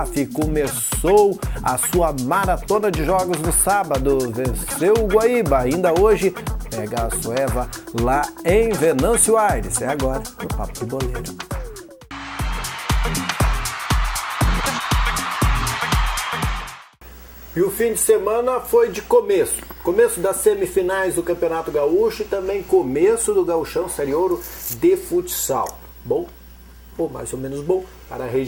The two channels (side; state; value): both; identical; correlation 1.00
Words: começou a sua maratona de jogos no sábado, venceu o Guaíba. Ainda hoje pega a Sueva lá em Venâncio Aires. É agora no Papo de Boleiro. E o fim de semana foi de começo das semifinais do Campeonato Gaúcho e também começo do Gauchão Série Ouro de futsal. Bom, ou mais ou menos bom, para a